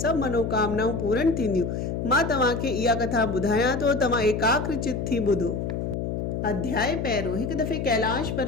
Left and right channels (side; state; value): left; noise; hum, 3 dB below the sound